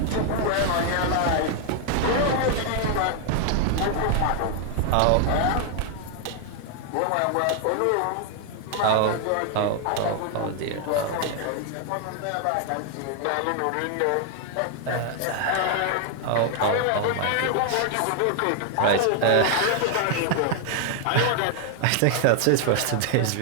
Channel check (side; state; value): both; different; correlation 0.00